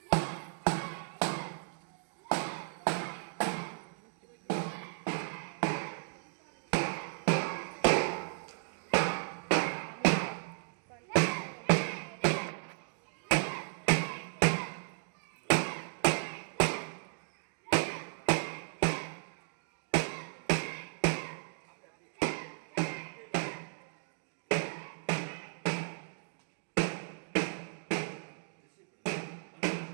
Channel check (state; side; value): silent; left; digital silence